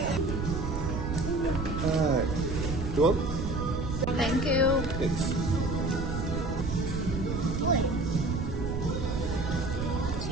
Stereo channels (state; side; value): noise; right; rumble, 3 dB below the sound